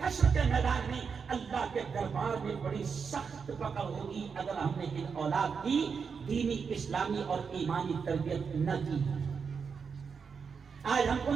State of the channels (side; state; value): left; quieter; 5.9 dB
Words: حشر کے میدان میں اللہ کے دربار میں بڑی سخت پکڑ ہوگی اگر ہم نے ان اولاد کی دینی، اسلامی اور ایمانی تربیت نہ کی. آج ہم کو